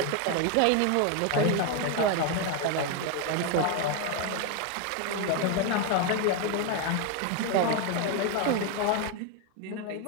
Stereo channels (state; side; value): different; both; correlation 0.01